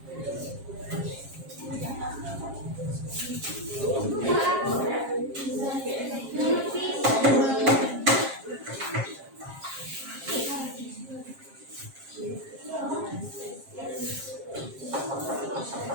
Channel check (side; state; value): left; late; 7.5 ms